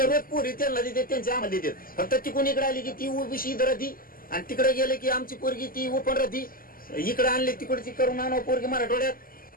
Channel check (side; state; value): right; late; 0.42 ms